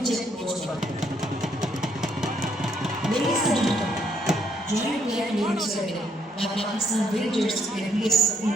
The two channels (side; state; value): both; normal; correlation 0.71